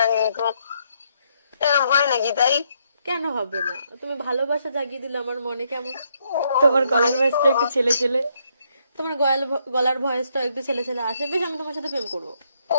কিন্তু, এরকম হয় নাকি? তাই কেন হবে না? তুমি ভালোবাসা জাগিয়ে দিলে আমার মনে কেমন। তোমার গলার ভয়েসটা একটু ছেলে ছেলে। তোমার গলার ভয়েসটা একটু ছেলে ছেলে আসে, বেশ আমি তোমার সাথে প্রেম করবো।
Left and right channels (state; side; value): inverted; both; correlation -0.74